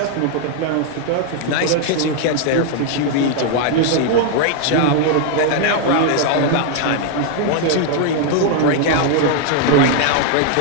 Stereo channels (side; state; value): both; different; correlation 0.00